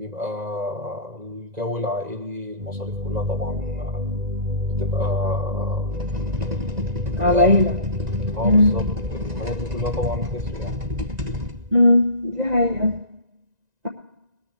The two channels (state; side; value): late; left; 1.9 ms